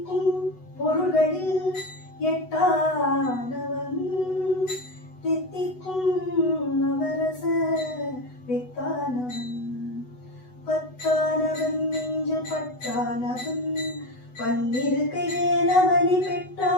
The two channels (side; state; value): right; late; 8.0 ms